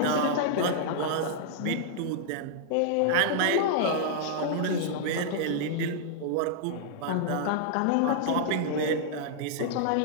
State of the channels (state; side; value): different; both; correlation -0.01